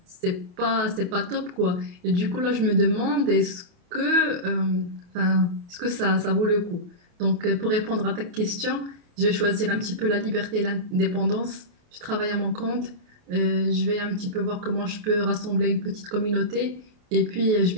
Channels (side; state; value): left; late; 28 ms